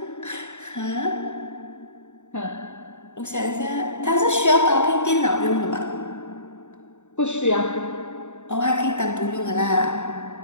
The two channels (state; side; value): late; right; 0.84 ms